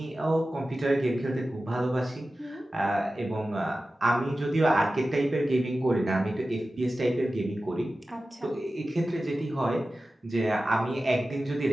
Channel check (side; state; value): both; normal; correlation 0.94